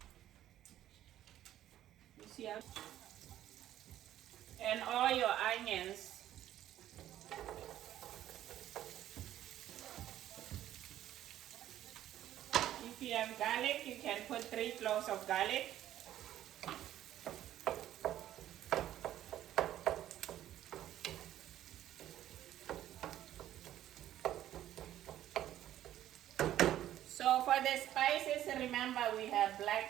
You see how? And all your onions. If you have garlic, you can put 3 cloves of garlic. So for the spices, remember we have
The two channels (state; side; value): quieter; left; 12.5 dB